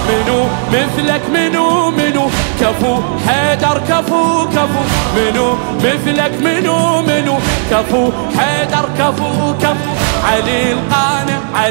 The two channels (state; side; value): silent; left; digital silence